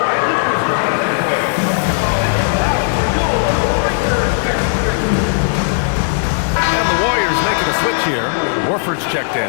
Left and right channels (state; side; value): silent; right; 61 dB below the other